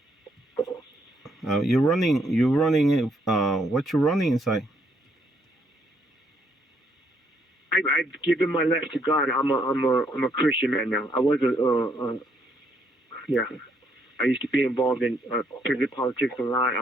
You're running. You running. What you running inside? I've given my life to God. I'm a Christian man now. I was yeah. I used to be involved in prison politics a lot.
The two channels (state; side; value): normal; both; correlation 0.71